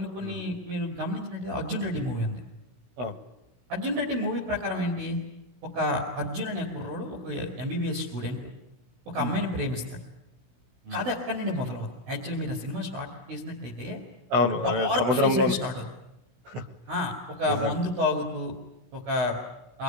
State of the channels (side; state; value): left; late; 16 ms